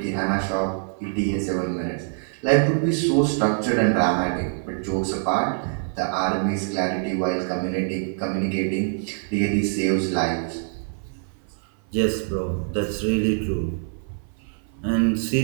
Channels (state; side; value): silent; left; 56 dB below the other